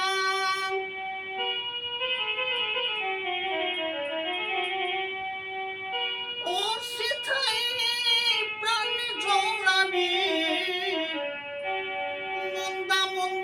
ও সেথায় প্রাণ জোড়াবি মন্দা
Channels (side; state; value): both; identical; correlation 1.00